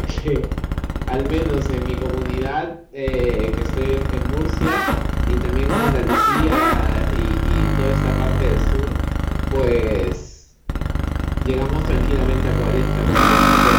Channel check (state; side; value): identical; both; correlation 1.00